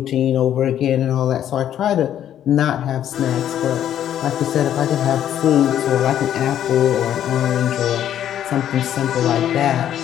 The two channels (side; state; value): right; quieter; 10.7 dB